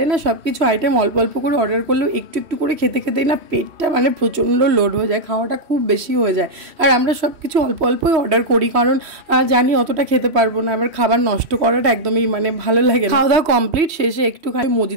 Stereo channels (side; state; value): left; late; 3.0 ms